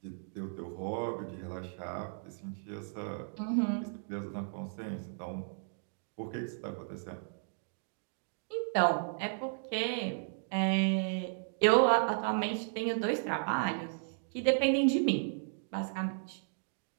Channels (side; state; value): left; silent; digital silence